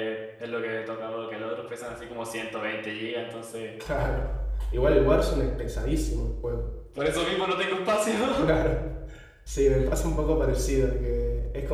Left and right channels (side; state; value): both; identical; correlation 1.00